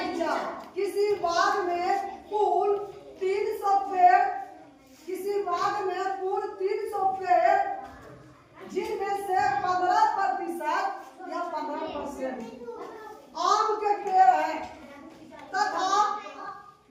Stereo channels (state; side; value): identical; both; correlation 1.00